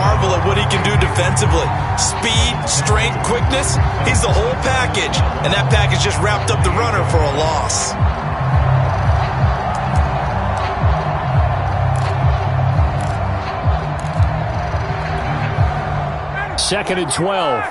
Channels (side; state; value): both; identical; correlation 1.00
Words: at what he can do defensively. Speed, strength, quickness, he's the whole package. And that package just wrapped up the runner for a loss. Second and 12.